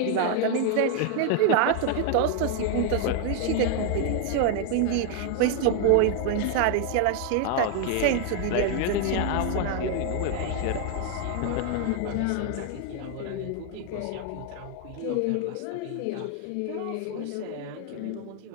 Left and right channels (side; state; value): both; different; correlation 0.00